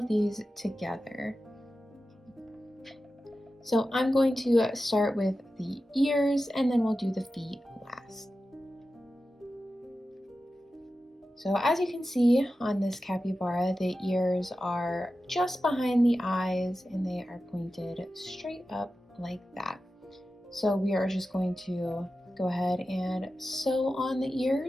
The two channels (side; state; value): both; normal; correlation 0.93